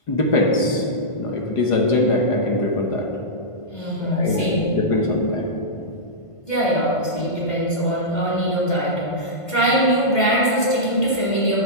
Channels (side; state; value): right; late; 1.5 ms